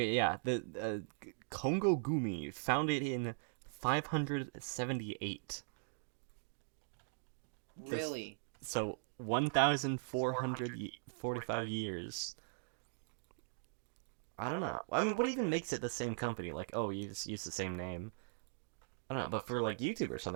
yeah, the Kongo Gumi founded in 578. This Really? so 1,445 years. I don't know. I mean, what even makes it the same company? Like, oh, you just use the same name. I don't know, but for like YouTube or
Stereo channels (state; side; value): silent; left; digital silence